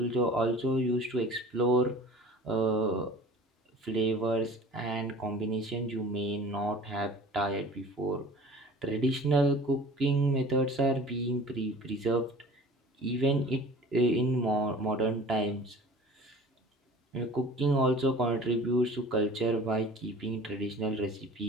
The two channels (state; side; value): normal; both; correlation 0.43